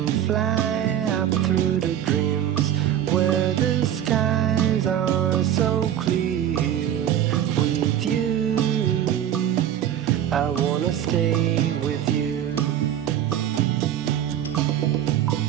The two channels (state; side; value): quieter; left; 10.8 dB